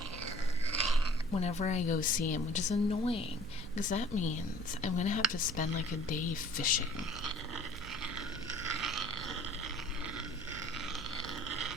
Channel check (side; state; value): right; noise; hum, 12 dB below the sound